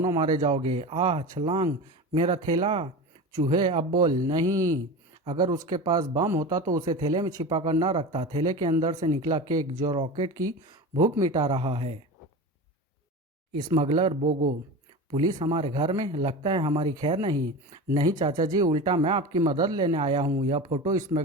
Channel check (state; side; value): normal; both; correlation 0.29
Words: मारे जाओगे। आह छलांग, मेरा थैला। चूहे, अब बोल। नहीं, अगर उसके पास बम होता तो उसे थैले में छिपा कर न रखता। थैले के अंदर से निकला केक जो रॉकेट की भूख मिटा रहा है। स्मगलर बोगो, पुलिस हमारे घर में? लगता है हमारी खैर नहीं। नहीं चाचा जी, उल्टा मैं आपकी मदद लेने आया हूँ। यह फोटो